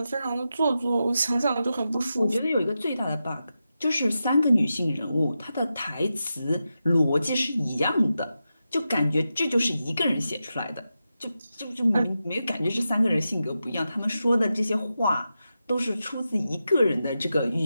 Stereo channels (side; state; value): both; inverted; correlation -0.90